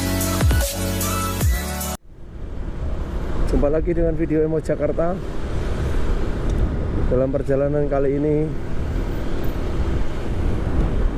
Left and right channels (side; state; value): both; identical; correlation 1.00